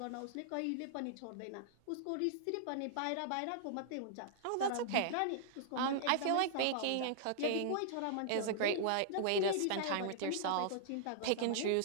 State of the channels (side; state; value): both; different; correlation -0.01